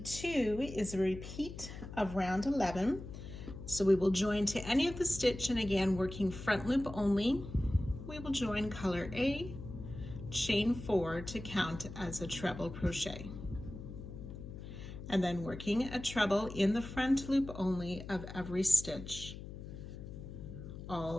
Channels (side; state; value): left; noise; hum, 11 dB below the sound